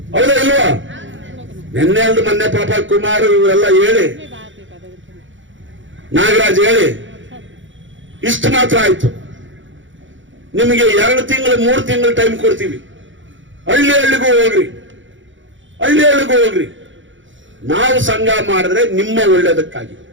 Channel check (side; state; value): left; late; 0.56 ms